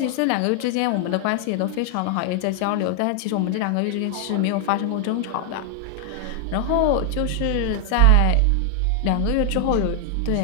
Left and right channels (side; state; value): both; different; correlation 0.00